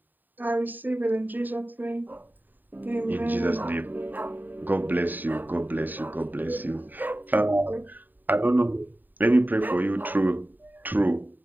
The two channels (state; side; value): late; left; 0.089 ms